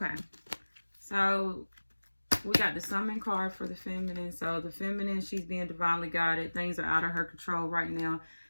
so we got the Summon card for the Feminine. So the Feminine, she's being divinely guided. Things are out of her control right now.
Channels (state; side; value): inverted; both; correlation -1.00